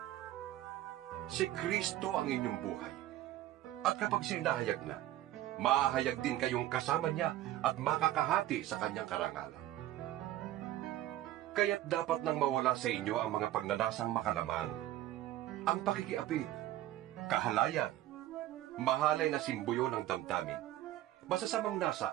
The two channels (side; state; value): left; quieter; 14.1 dB